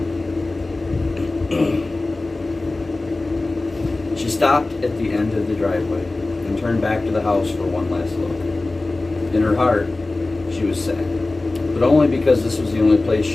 She stopped at the end of the driveway and turned back to the house for one last look. In her heart, she was sad, but only because this was the only place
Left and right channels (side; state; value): right; quieter; 3.1 dB